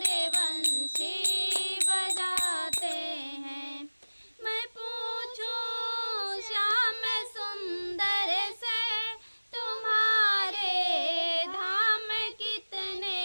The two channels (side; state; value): both; inverted; correlation -1.00